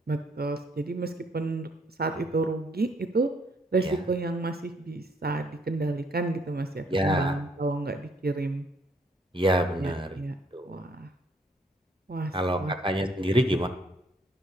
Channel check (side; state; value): both; normal; correlation 0.67